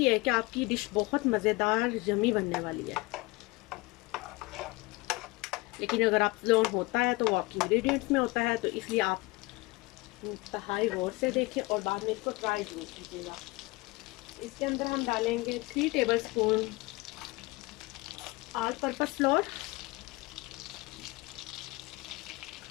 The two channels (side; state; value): right; quieter; 23.4 dB